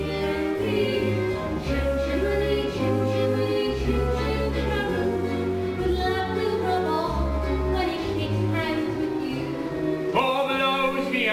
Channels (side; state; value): both; identical; correlation 1.00